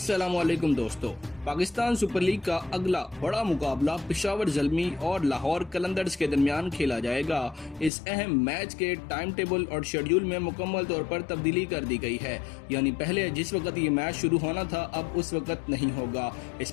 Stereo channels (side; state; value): right; drops out; at 7.9 s